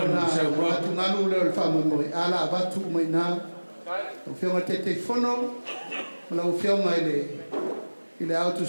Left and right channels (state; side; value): inverted; both; correlation -1.00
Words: na watu ngalu le fa Moimoi ala watu mai na o fionga te fono la o fionga ile auto